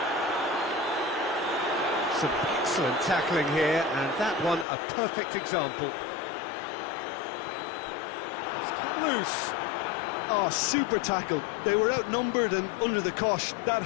Some excellent tackling here, and that one a perfect example. It's come loose. Oh, super tackle. They were outnumbered and under the cosh. That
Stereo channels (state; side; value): drops out; right; at 4.7 s